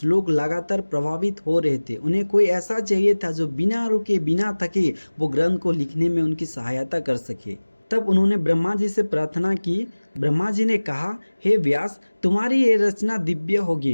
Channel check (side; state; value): both; inverted; correlation -1.00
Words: लगातार प्रभावित हो रहे थे। उन्हें कोई ऐसा चाहिए था जो बिना रुके बिना थके वो ग्रंथ को लिखने में उनकी सहायता कर सके। तब उन्होंने ब्रह्मा जी से प्रार्थना की। ब्रह्मा जी ने कहा, हे व्यास, तुम्हारी ये रचना दिव्य